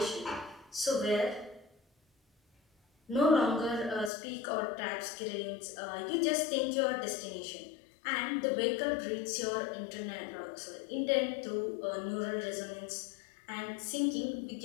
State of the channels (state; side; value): drops out; right; at 4.1 s